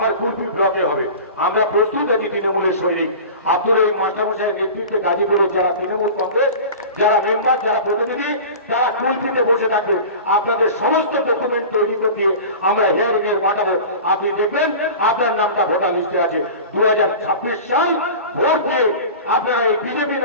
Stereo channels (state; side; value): inverted; both; correlation -0.35